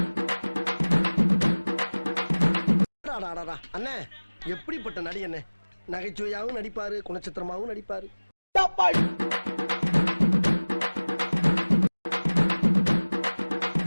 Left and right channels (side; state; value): both; inverted; correlation -1.00